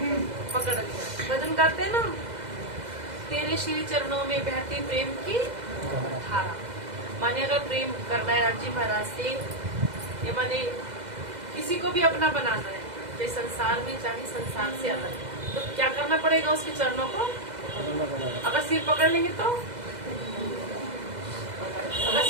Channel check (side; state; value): left; late; 2.0 ms